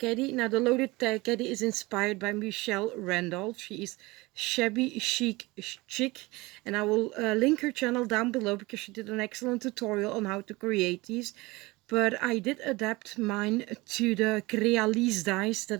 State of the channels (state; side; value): quieter; left; 22.3 dB